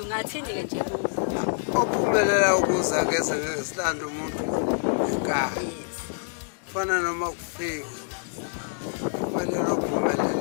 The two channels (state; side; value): silent; right; digital silence